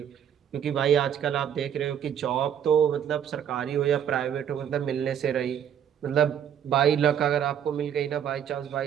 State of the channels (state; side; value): quieter; left; 9.1 dB